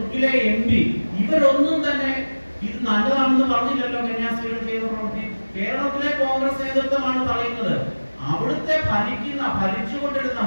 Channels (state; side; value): inverted; both; correlation -1.00